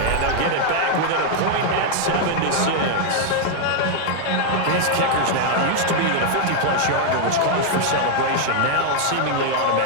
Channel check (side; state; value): both; different; correlation 0.00